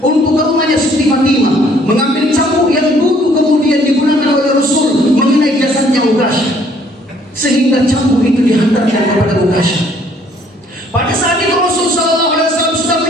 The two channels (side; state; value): both; normal; correlation 0.62